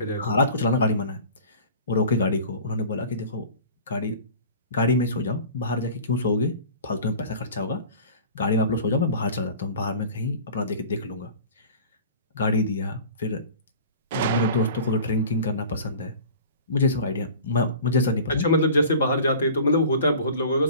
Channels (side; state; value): both; inverted; correlation -0.41